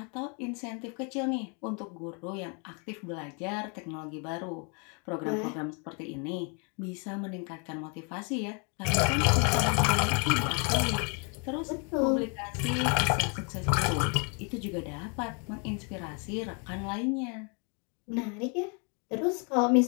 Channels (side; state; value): right; quieter; 36.5 dB